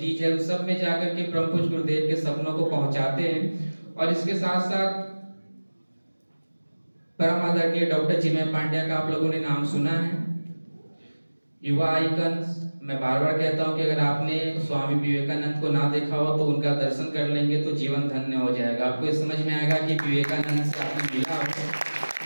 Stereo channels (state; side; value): inverted; both; correlation -1.00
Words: है, उन सब में जाकर के परम पूज्य गुरुदेव के सपनों को पहुंचाते हैं। और इसके साथ साथ परम आदरणीय डॉक्टर चिन्मय पांड्या का आप लोगों ने नाम सुना है, युवा आइकन्स। मैं बार बार कहता हूं कि अगर आपने स्वामी विवेकानंद को ना देखा हो तो उनका दर्शन कर लेंगे तो जीवन धन्य हो जाएगा। आपको ये समझ में आएगा कि विवेकानंद से आपने मिला हो,